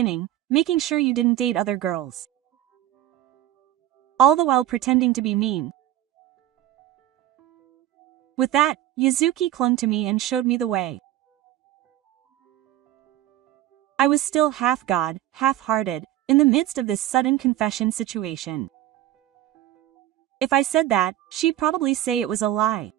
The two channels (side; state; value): left; quieter; 13.3 dB